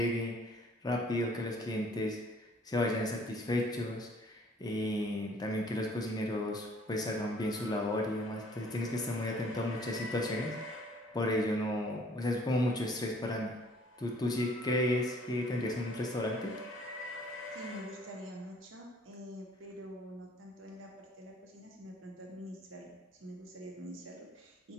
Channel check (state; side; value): normal; both; correlation 0.57